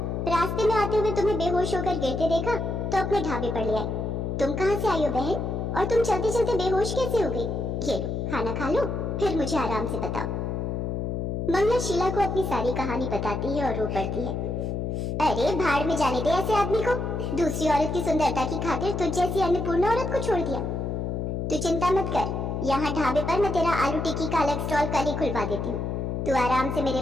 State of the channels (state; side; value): noise; left; hum, 2 dB below the sound